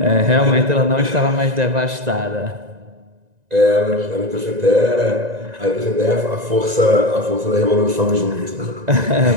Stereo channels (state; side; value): late; left; 1.9 ms